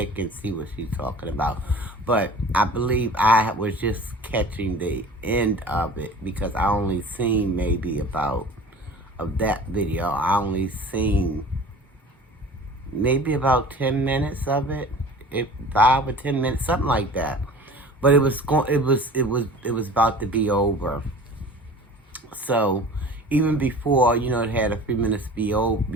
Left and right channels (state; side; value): normal; both; correlation 0.42